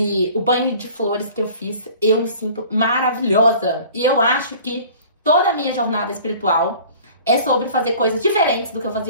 o banho de flores que eu fiz, eu me sinto maravilhosa. E eu acho que toda a minha jornada espiritual é sobre fazer coisas diferentes do que eu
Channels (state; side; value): inverted; both; correlation -0.46